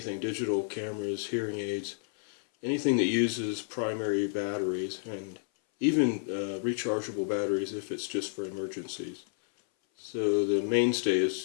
digital cameras, hearing aids, anything that uses primary batteries, and even rechargeable batteries if it's just for emergencies. So the mainstay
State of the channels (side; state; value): right; silent; 57 dB below the other